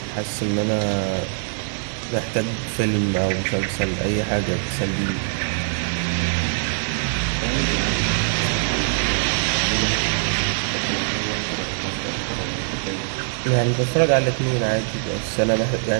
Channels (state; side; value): silent; left; digital silence